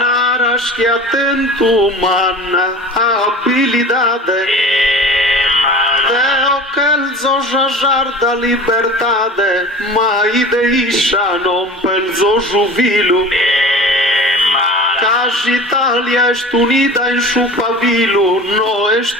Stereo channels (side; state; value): both; normal; correlation 0.38